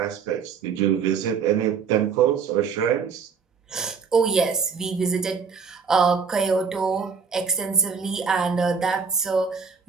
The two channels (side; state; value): left; quieter; 5.9 dB